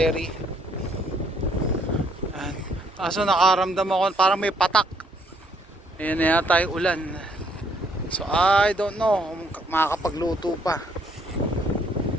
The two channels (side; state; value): both; normal; correlation 0.67